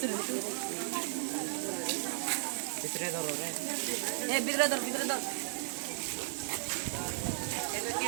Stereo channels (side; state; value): left; silent; digital silence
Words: ভিতরে ধরো রে এই ভিতরে ধর